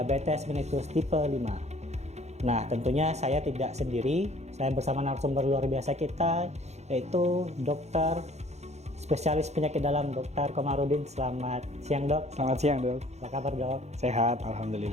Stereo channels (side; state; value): left; late; 0.32 ms